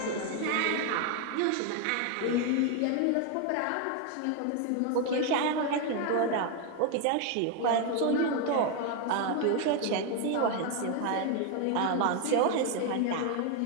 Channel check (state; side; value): different; both; correlation 0.01